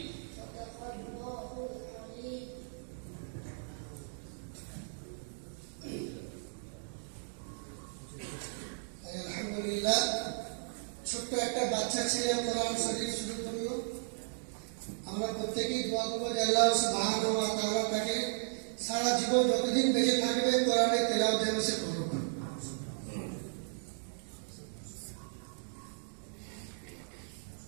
আলহামদুলিল্লাহ, ছোট্ট একটা বাচ্চা ছেলে কোরআন শরীফ শুরু করলো। আমরা প্রত্যেকেই দোয়া করবো যে আল্লাহ সুবহানাহু ওয়া তাআলা তাকে সারা জীবন যতদিন বেঁচে থাকবে কোরআনের তেলাওয়াত যেন সে করবে।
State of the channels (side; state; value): left; silent; digital silence